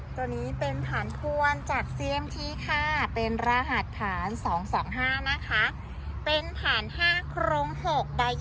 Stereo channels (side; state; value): both; identical; correlation 1.00